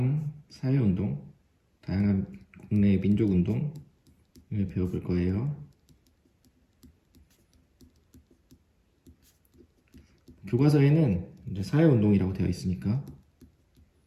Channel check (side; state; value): both; identical; correlation 1.00